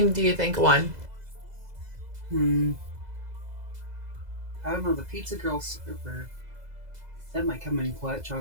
do you think won? I don't know, the Pizza Girl server. That might come in clutch,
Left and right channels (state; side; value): late; left; 2.0 ms